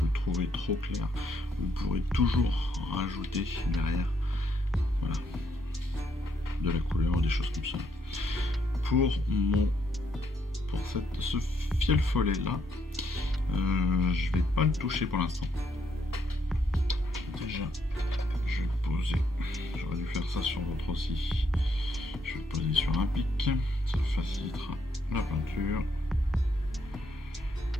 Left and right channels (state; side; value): normal; both; correlation 0.73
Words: le trouvez trop clair, vous pourrez toujours rajouter derrière, voilà, de la couleur, des choses comme ça. Pour ce fiel follet là, je vais pas le toucher pour l'instant. Déjà, je vais le poser. J'aurais dû faire ça sur l'autre aussi. Je vais le poser sur un pic, ça facilitera la peinture.